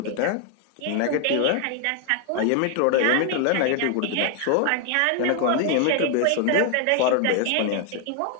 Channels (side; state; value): both; different; correlation 0.00